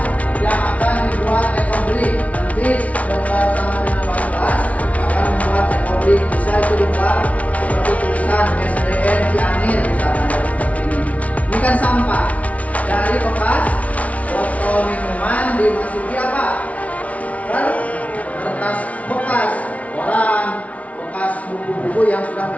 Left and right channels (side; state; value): right; late; 0.067 ms